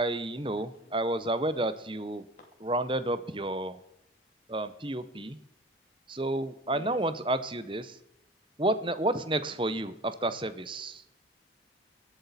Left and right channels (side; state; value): both; normal; correlation 0.38